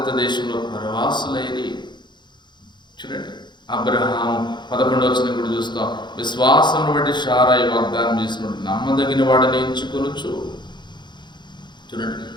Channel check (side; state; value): right; late; 0.22 ms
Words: దేశంలో పరవాసులైరి. చూడండి, అబ్రహాము 11వ వచనం కూడా చూస్తాం, విశ్వాసమును బట్టి శారాయి వాగ్దానం చేసినప్పుడు నమ్మదగిన వాడిని ఎంచుకొనుచు. చూడండి,